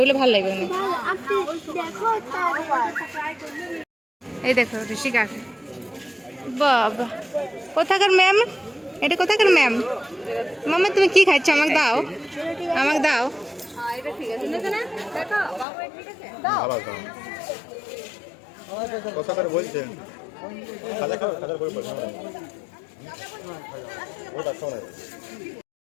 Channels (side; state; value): right; drops out; at 15.7 s